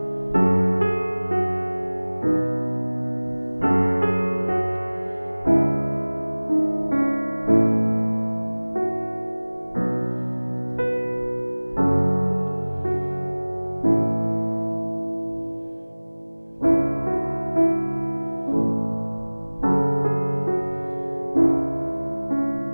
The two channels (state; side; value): inverted; both; correlation -1.00